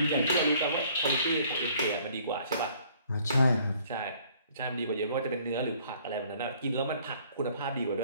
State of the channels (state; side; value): inverted; both; correlation -0.59